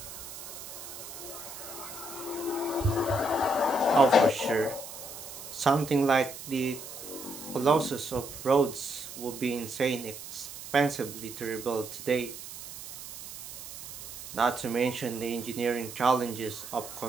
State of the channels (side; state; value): right; noise; hiss, 11 dB below the sound